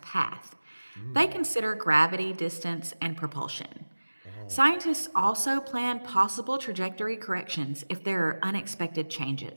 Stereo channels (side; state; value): both; inverted; correlation -1.00